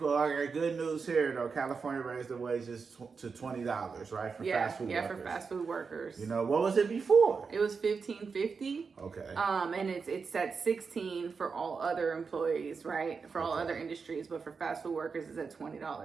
Okay, good news here though. California raised the wages to $20, right, for fast food workers. Yeah, for fast food workers. What was it before? It was $15.50. Okay. And it's at $16 for all other employees, right? For all other industries, but for fast food workers, it's at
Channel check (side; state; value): left; quieter; 5.2 dB